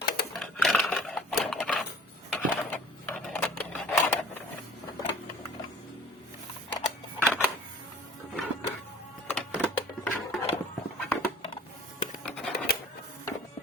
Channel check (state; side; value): normal; both; correlation 0.48